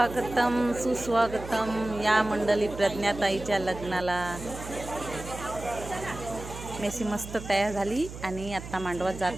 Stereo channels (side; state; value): right; noise; hum, 11 dB below the sound